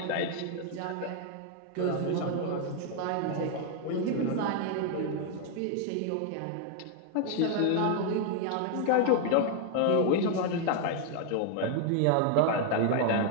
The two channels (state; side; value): different; both; correlation 0.00